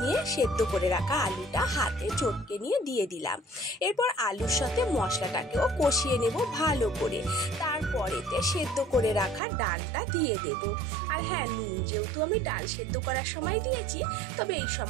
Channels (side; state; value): left; drops out; at 9.4 s